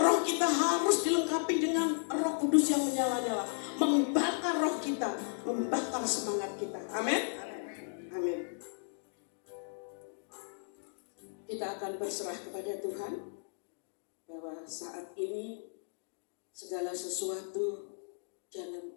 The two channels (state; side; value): silent; right; digital silence